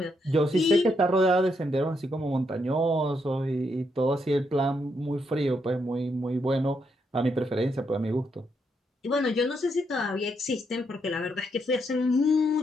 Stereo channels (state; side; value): normal; both; correlation 0.78